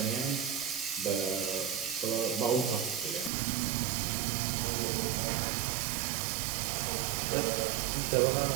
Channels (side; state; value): left; drops out; at 3.3 s